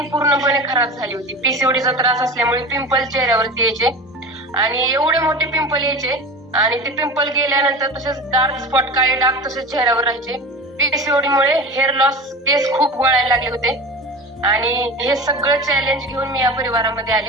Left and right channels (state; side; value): normal; both; correlation 0.32